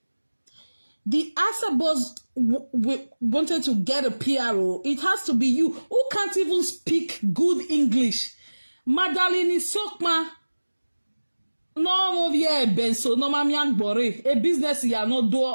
The Asabos wanted to get a PRO. It has to be you who can't even speak good English. Madeline Isokma. No, yeah, Benso, no, mamiang bore. A business ya no do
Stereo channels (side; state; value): both; inverted; correlation -1.00